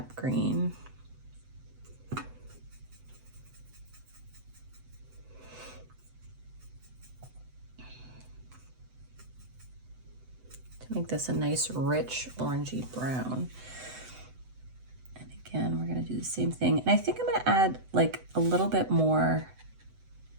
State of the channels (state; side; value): late; left; 7.9 ms